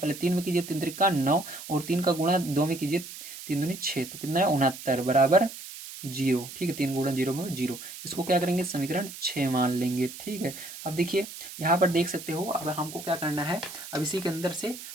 3 में कीजिए, 3 त्रिका 9, और 3 का गुणा 2 में कीजिए, 3 दूनी 6, तो कितना है 69 बराबर 0, ठीक है, 3 गुणा 0 में 0। इसको क्या करेंगे, समीकरण 6 मान लेंगे, ठीक है। अब देखिए यहाँ पर देख सकते हो, अब हमको क्या करना है, अब इसी के अंदर से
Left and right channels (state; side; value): noise; right; hiss, 12 dB below the sound